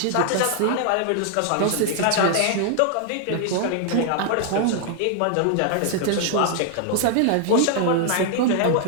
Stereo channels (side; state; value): both; different; correlation 0.00